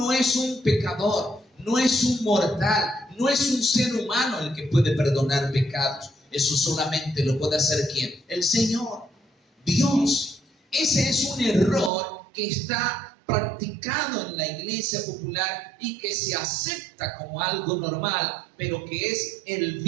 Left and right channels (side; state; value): left; drops out; at 11.9 s